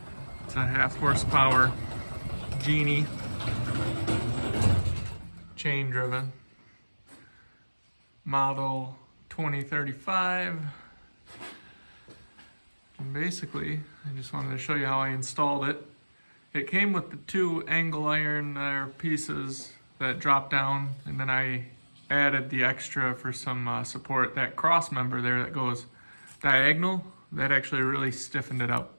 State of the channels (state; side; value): inverted; both; correlation -1.00